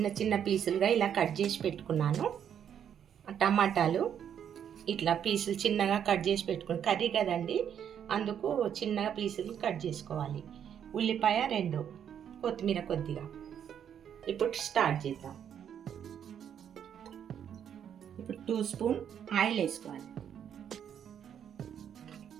చిన్న పీసులుగా ఇలా కట్ చేసి పెట్టుకున్నాను. టమాటాలు ఇట్లా పీసులు చిన్నగా కట్ చేసి పెట్టుకుని, కర్రీ కదండి అందుకు చిన్నగా పీసులు కట్ చేసుకోవాలి. ఉల్లిపాయ 2, కొత్తిమీర కొద్దిగా. ఇప్పుడు స్టార్ట్ చేద్దాం. ఇప్పుడు 2 స్పూన్ ఆయిల్ వేసుకోవాలి.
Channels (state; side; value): quieter; left; 8.9 dB